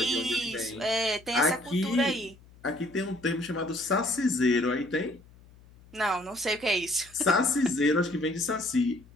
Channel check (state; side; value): noise; left; hum, 25 dB below the sound